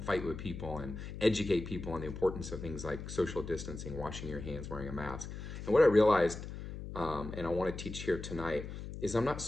fight with people and educate people on the importance of things like social distancing, washing your hands, wearing a mask. And what I realized, and I want to teach here tonight, is I'm not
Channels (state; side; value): noise; left; hum, 9 dB below the sound